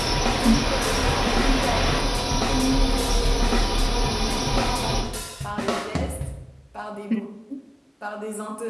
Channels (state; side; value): identical; both; correlation 1.00